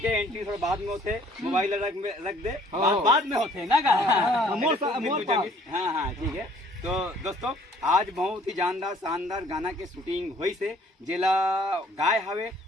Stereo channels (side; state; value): both; normal; correlation 0.58